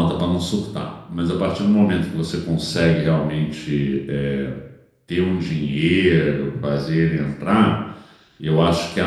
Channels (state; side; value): identical; both; correlation 1.00